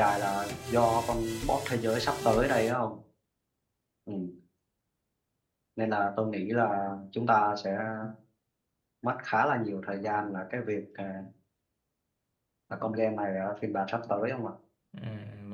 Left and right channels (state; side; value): identical; both; correlation 1.00